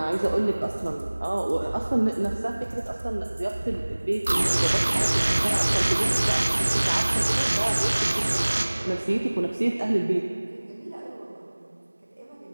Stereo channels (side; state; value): both; inverted; correlation -1.00